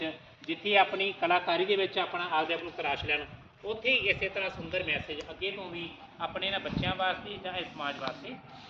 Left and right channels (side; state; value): both; identical; correlation 1.00